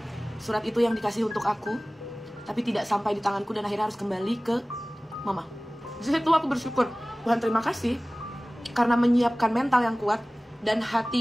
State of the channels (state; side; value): normal; both; correlation 0.98